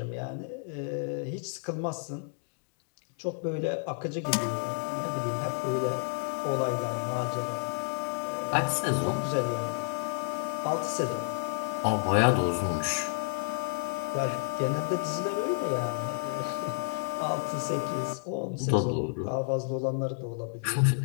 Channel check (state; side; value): silent; right; 57 dB below the other